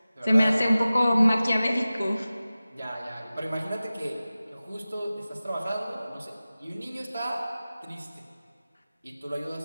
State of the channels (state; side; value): inverted; both; correlation -0.96